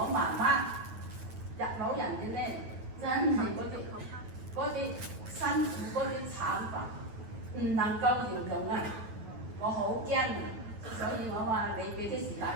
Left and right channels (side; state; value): left; late; 9.3 ms